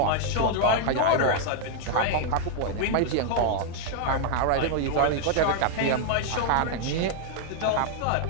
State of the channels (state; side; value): different; both; correlation 0.00